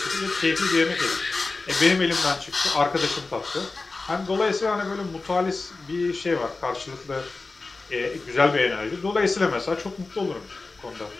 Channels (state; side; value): quieter; right; 3.7 dB